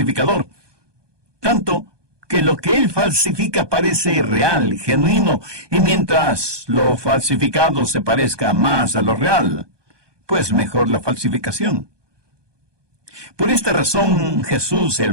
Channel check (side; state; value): left; late; 1.2 ms